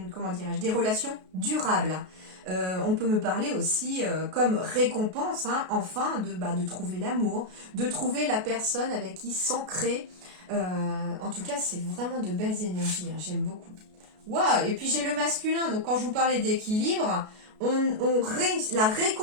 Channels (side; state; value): left; late; 33 ms